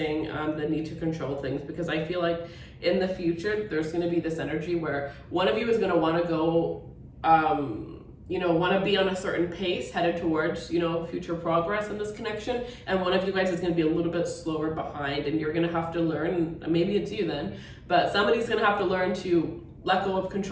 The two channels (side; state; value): both; identical; correlation 1.00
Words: the need to control things, because I feel like in the future, there's going to be this energy where one of you is going to want to go, want to be on a certain pace headed towards, future progress in this connection. And one of you guys is going to be a little bit slower behind, and you're going to have to learn, maybe it's you then, but somebody's going to have to learn to let go of